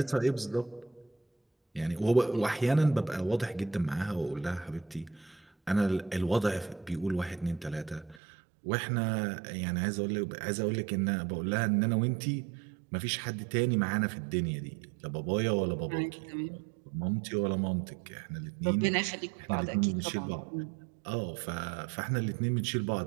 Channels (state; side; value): drops out; left; at 8.2 s